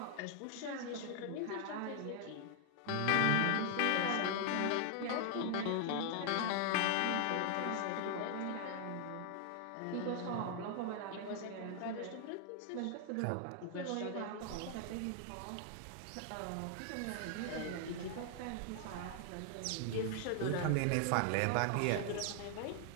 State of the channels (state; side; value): different; both; correlation 0.00